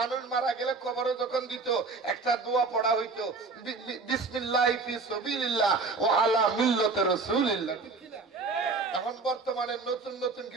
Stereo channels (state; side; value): quieter; left; 4.1 dB